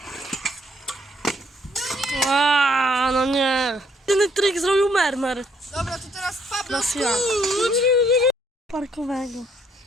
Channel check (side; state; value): both; normal; correlation 0.69